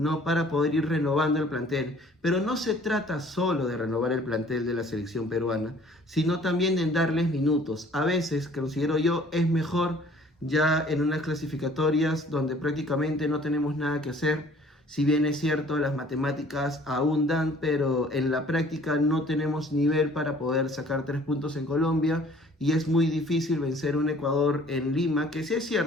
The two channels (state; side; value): normal; both; correlation 0.54